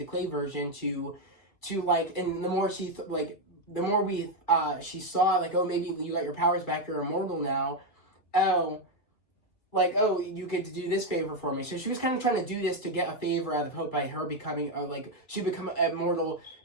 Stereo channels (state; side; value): late; right; 2.5 ms